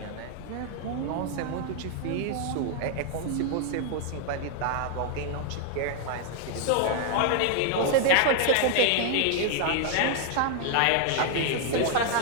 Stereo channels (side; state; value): both; different; correlation 0.00